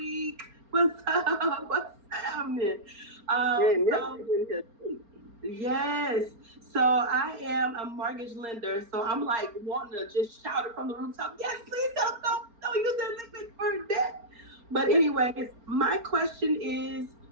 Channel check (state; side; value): late; left; 4.4 ms